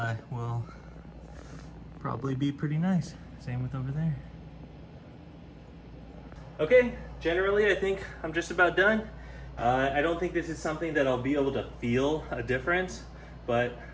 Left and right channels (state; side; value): identical; both; correlation 1.00